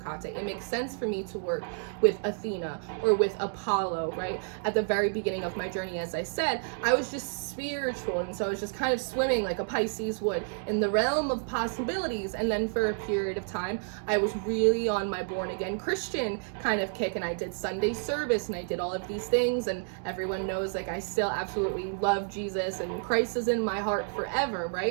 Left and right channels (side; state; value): left; silent; 58 dB below the other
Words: It makes sense for me to work with Athena or with Apollo, right? At the very beginning of my journey, as I said, I was just spiritual, and so I was just kind of swimming like a Pisces would in the realm of possibilities. And then for a period of time, I was really on my born again Christian kind of kick, and I did Sunday service and I did all of these things, and everyone knows, like, I still absolutely love Jesus and Christ is was in my heart forever,